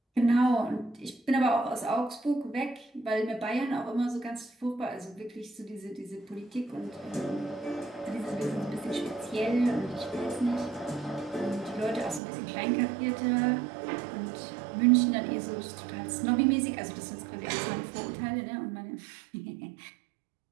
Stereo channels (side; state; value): left; drops out; at 12.2 s